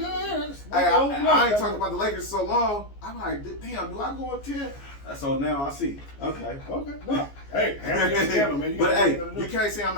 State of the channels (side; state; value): right; late; 14 ms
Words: I ain't talking about the Lakers so long. I'm like, damn, do I go up 10? So now I see. Okay. No. Hey, man. But hey, you can't say I'm